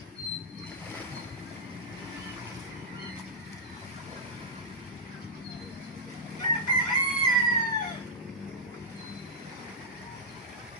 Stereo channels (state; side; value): normal; both; correlation -0.07